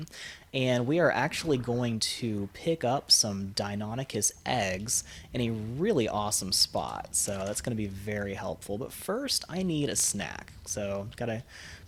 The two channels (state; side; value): identical; both; correlation 1.00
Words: And we are actually going to pick up some Deinonychus eggs in a really awesome spot. So that's going to be very helpful. But first, I need a snack. So got a